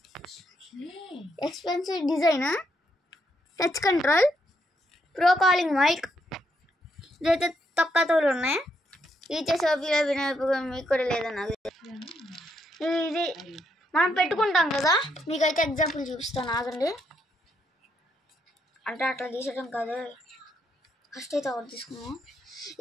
Expensive design, touch control, pro calling mic. ఇదైతే తక్కువతోలు ఉన్నాయి. ఈచే సోఫీలో వినోపం మీకు కూడా లేదన్న. ఇది మనం పెట్టుకుంటాం కదా, మీకైతే ఎగ్జాంపుల్ చూపిస్తాను, ఆగండి. అంటే అట్లా తీసడం కాదు, ఫస్ట్ అయితే ఒకటి తీసుకున్నాం.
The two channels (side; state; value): both; normal; correlation 0.77